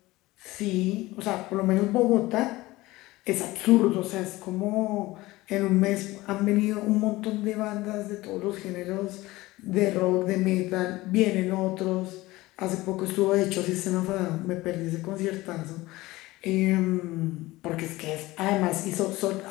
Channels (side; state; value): right; quieter; 19.2 dB